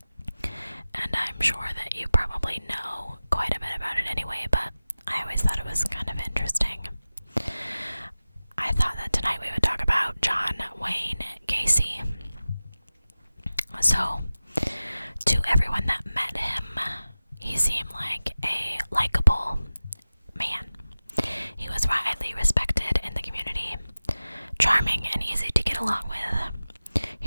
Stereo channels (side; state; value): both; inverted; correlation -0.96